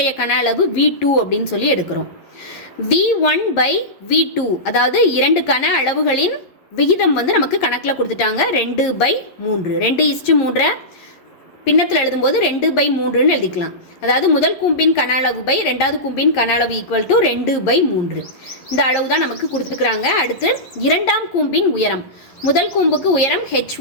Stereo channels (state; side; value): late; right; 11 ms